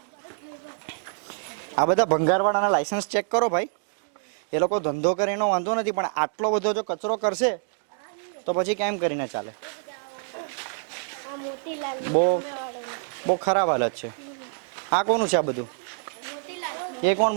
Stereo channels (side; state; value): left; silent; 61 dB below the other